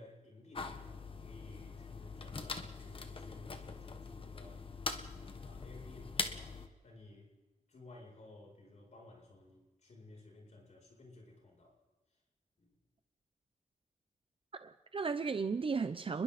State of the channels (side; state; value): both; normal; correlation 0.52